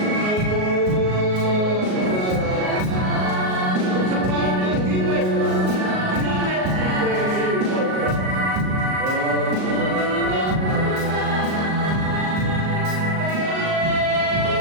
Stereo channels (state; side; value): late; left; 38 ms